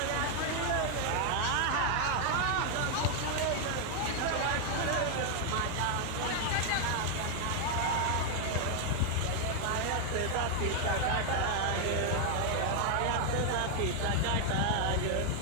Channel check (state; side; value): different; both; correlation 0.00